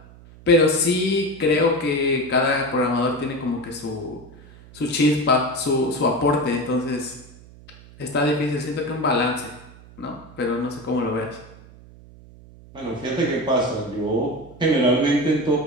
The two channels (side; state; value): right; noise; hum, 21 dB below the sound